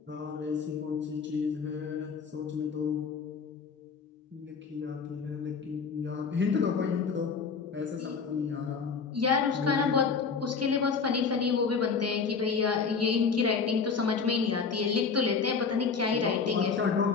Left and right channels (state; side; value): quieter; right; 5.5 dB